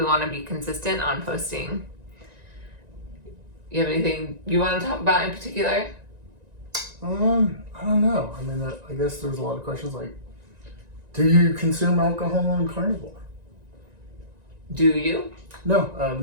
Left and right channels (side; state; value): left; late; 1.9 ms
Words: want to be consistent on posting. You have anything you want to talk about in particular? I don't know. I mean, I guess there's a lot of questions like, do you consume alcohol on carnivore? Do you? No, I've